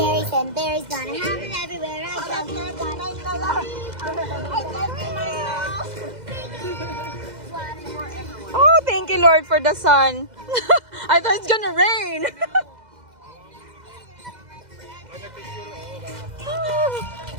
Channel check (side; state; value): left; late; 2.0 ms